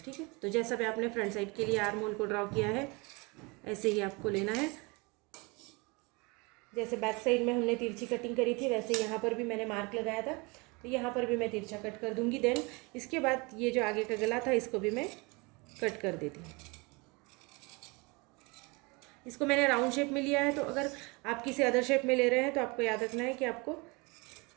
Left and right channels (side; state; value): left; quieter; 27.6 dB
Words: ठीक है। तो जैसा भी आपने फ्रंट साइड के लिए आर्म होल को ड्रॉ किया है, ऐसे ही आपको लेना है। जैसे बैक साइड में हमने तिरछी कटिंग करी थी, वैसे यहाँ पर भी मैंने मार्क लगाया था, तो यहाँ पर भी मैं तिरछा कट कर दूँगी। देन इसके बाद ये जो आगे का गला था, इसको भी मैं कट कर देती हूँ। इसको मैंने राउंड शेप में लिया है, तो अगर आप किसी अदर शेप में ले रहे हैं तो आपको याद रखना है कि आपको